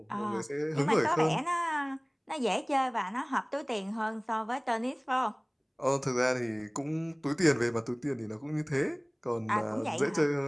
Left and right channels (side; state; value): both; identical; correlation 1.00